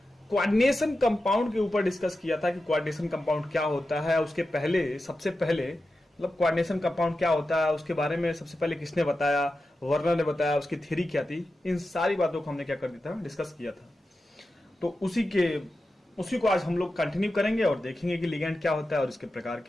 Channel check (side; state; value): both; normal; correlation 0.91